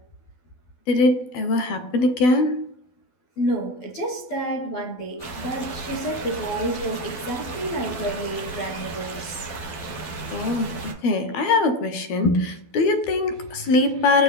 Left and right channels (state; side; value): late; right; 12 ms